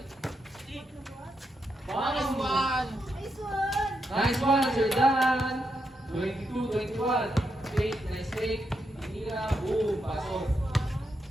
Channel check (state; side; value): normal; both; correlation 0.83